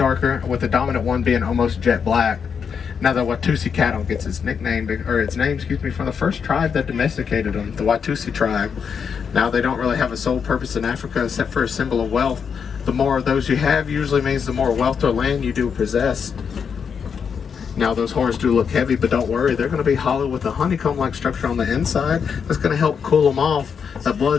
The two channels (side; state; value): right; quieter; 6.6 dB